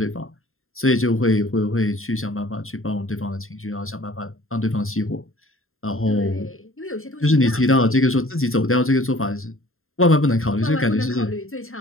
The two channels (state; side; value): late; right; 0.61 ms